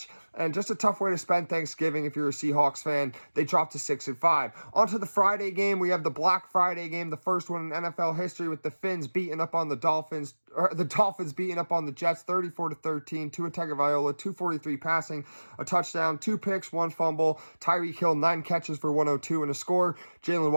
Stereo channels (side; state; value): both; inverted; correlation -1.00